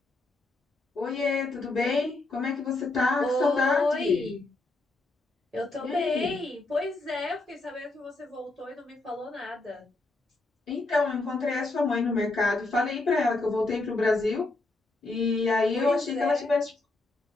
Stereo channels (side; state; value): right; quieter; 3.1 dB